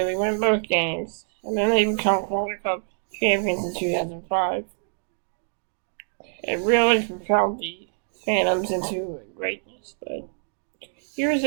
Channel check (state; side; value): silent; left; digital silence